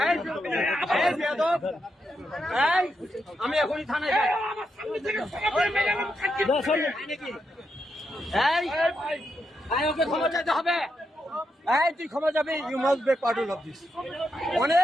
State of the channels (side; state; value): both; normal; correlation 0.83